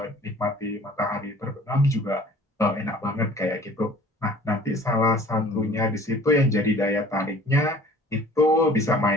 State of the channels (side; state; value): both; normal; correlation 0.50